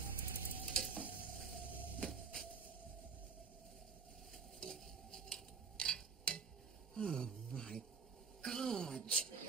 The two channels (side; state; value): left; quieter; 5.5 dB